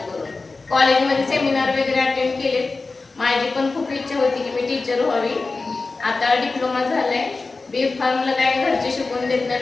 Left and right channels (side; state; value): right; quieter; 3.8 dB